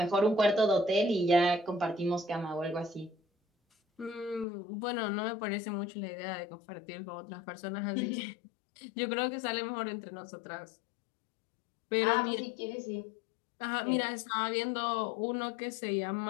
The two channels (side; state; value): right; drops out; at 4.5 s